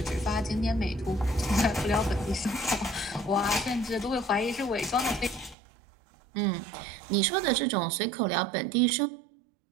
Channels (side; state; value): left; drops out; at 5.6 s